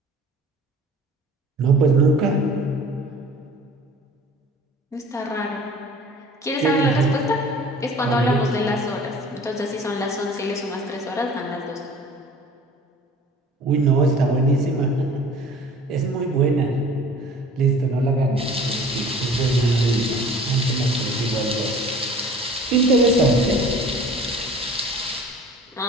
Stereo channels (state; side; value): normal; both; correlation 0.46